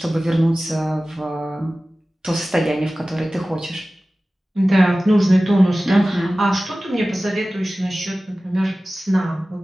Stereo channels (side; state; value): both; normal; correlation 0.96